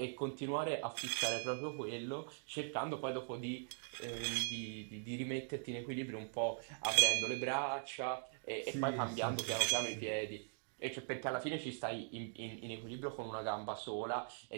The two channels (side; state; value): left; silent; digital silence